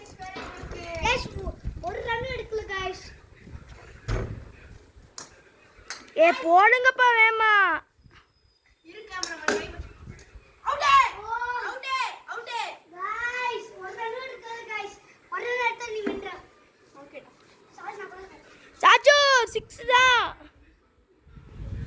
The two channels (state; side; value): identical; both; correlation 1.00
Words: வேற உங்களுக்கு गाइस ஒரு ரன் எடுக்கல गाइस. போடுங்கப்பா வேமா இரு கேமராமேன் அவுட் गाइस ஒரு ரன் எடுக்கல गाइस. ஒரு ரன் எடுத்தா நீ வின்ற. ஓகே சாரி நான் போறேன். சாச்சு 6 தான்.